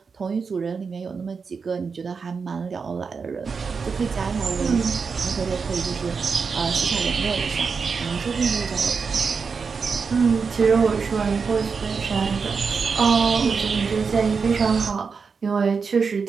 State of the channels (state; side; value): quieter; left; 5.3 dB